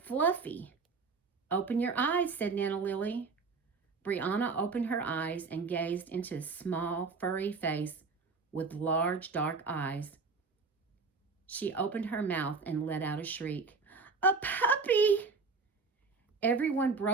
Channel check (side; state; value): left; quieter; 4.5 dB